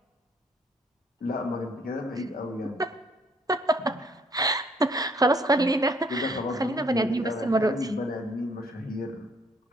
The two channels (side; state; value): both; normal; correlation 0.64